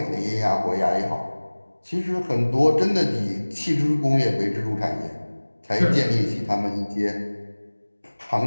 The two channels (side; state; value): both; inverted; correlation -1.00